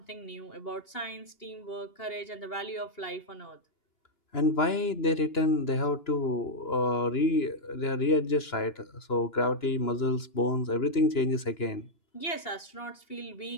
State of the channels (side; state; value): right; late; 2.8 ms